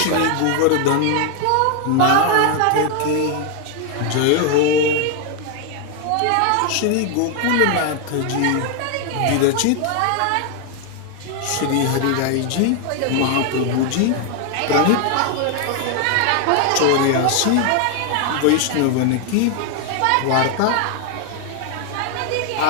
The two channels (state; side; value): different; both; correlation 0.01